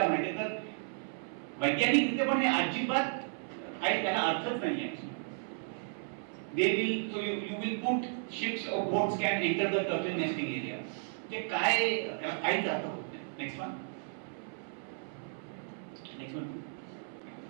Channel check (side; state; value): left; silent; 55 dB below the other